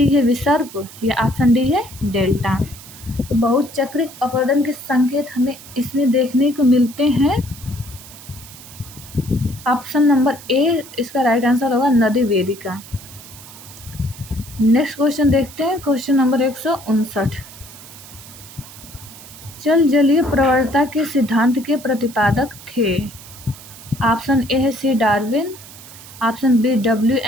है विसर्प, या ऑप्शन डी है डेल्टा। तो बहुचक्रिक अपरदन के संकेत हमें इसमें देखने को मिलते हैं। ऑप्शन नंबर ए इसका राइट आंसर होगा नदी वेदिका। नेक्स्ट क्वेश्चन देखते हैं, क्वेश्चन नंबर 159। जल जलीय प्रवणता के सिद्धांत के प्रतिपादक थे। ऑप्शन ए है C Darwin, option B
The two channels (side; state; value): right; noise; hiss, 17 dB below the sound